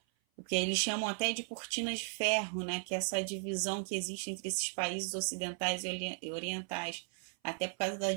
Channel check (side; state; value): left; silent; 54 dB below the other